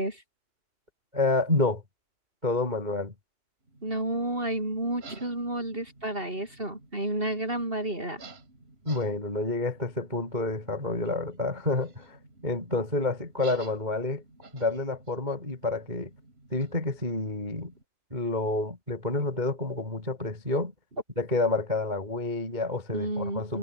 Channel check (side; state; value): left; late; 2.7 ms